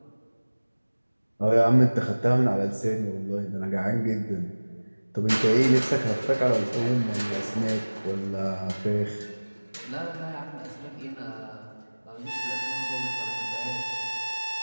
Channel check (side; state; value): both; inverted; correlation -1.00